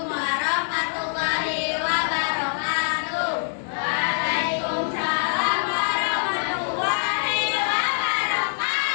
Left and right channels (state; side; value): silent; right; digital silence